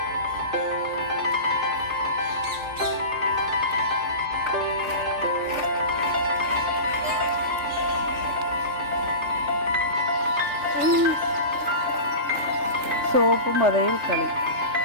സോപ്പും പതയിൽ കളി.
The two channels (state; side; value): late; left; 3.4 ms